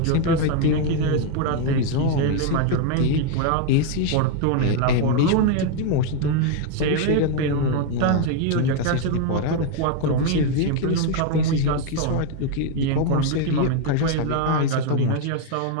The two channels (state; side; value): different; both; correlation 0.01